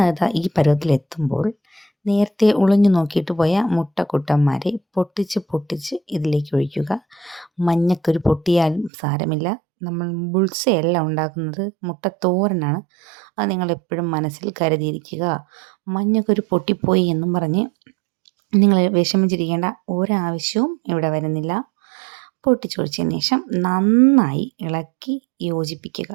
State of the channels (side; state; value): left; drops out; at 8.9 s